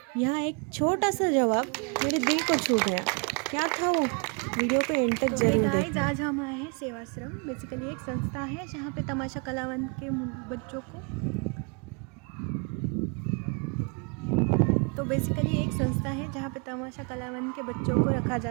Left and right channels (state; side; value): quieter; left; 35.8 dB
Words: यहाँ एक छोटा सा जवाब मेरे दिल को छू गया। क्या था वो? वीडियो को एंड तक जरूर देखना। आज हम आए हैं सेवाश्रम। बेसिकली एक संस्था है जहाँ पे तमाशा कलावंत के बच्चों को रखा